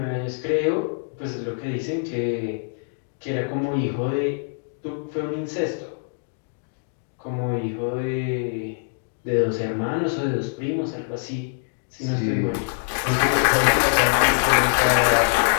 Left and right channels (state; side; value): silent; right; digital silence